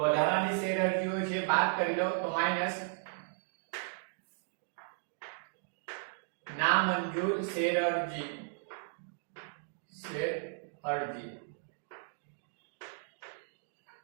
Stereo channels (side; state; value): left; silent; digital silence